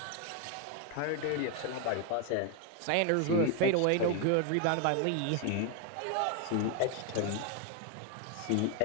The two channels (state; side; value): different; both; correlation 0.01